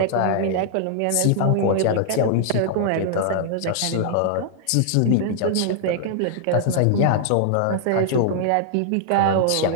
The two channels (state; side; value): different; both; correlation -0.01